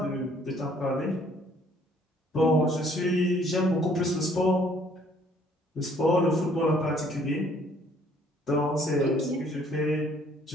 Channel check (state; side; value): normal; both; correlation 0.61